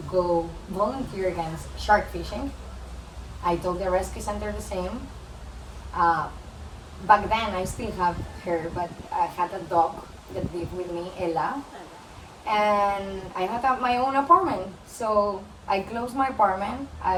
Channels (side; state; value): both; identical; correlation 1.00